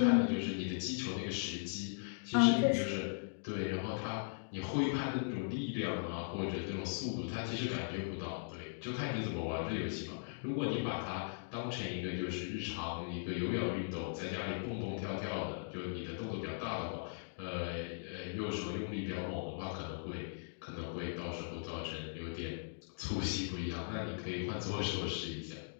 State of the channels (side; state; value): right; silent; digital silence